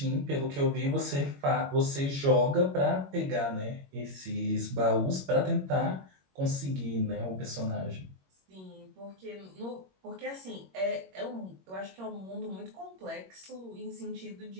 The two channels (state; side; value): late; left; 21 ms